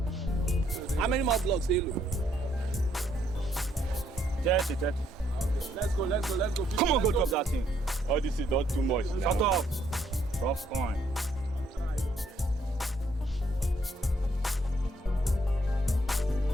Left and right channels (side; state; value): both; normal; correlation 0.70